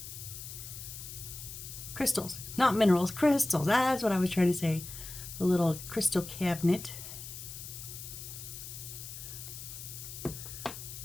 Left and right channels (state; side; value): noise; left; hiss, 10 dB below the sound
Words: crystals. Not minerals, crystals. That's what I was trying to say. The little crystal cabinet.